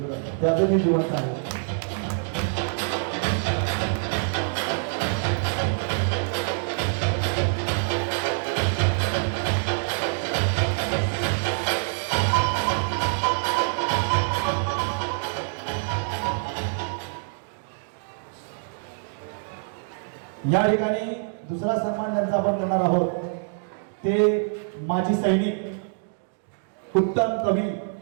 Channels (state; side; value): silent; left; digital silence